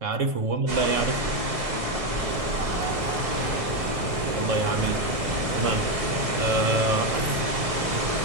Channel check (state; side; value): late; left; 1.6 ms